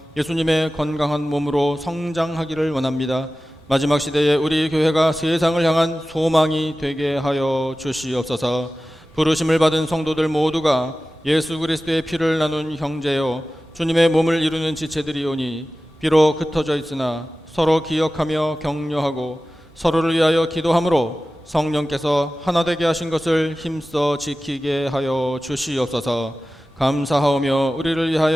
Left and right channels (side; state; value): both; normal; correlation 0.96